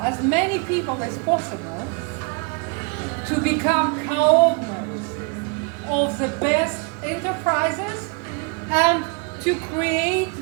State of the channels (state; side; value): quieter; left; 32.8 dB